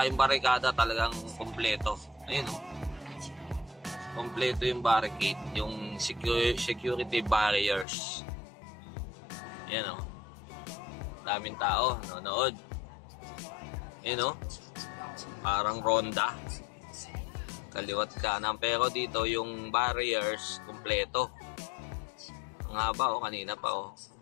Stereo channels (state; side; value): drops out; right; at 7.9 s